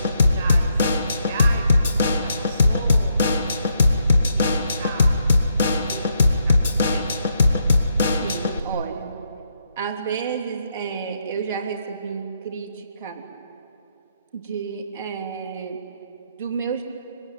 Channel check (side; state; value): both; inverted; correlation -0.79